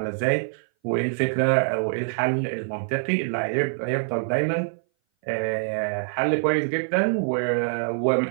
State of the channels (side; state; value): left; silent; 58 dB below the other